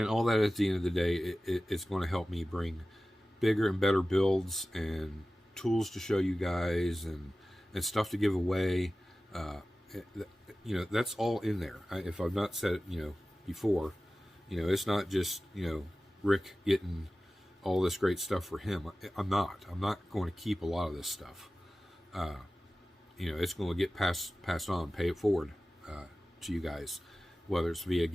all that, at the end of the day, it's going to help me bring bigger and better builds and tools to show you guys, and stuff to give away. You know, that's all in there. If I've not said it, you know, before, you know, it's not just, you know, Rick getting all this great stuff for him. I'm not going to keep a lot of this stuff. You know, it's going to get passed on, pay it forward to you guys, whether it's via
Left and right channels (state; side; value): normal; both; correlation 0.96